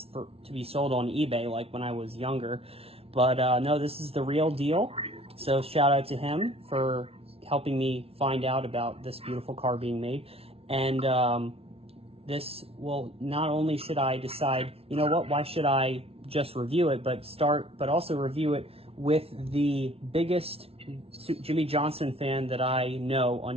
to be sold on eBay, like when I was younger. But no, this is the real deal. So shout out to him for helping me find out about this beautiful car being made. And this will, not only should I decide, you know what, why should I just review it, but also review it with the biggest Jimmie Johnson fan that I know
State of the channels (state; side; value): late; left; 0.28 ms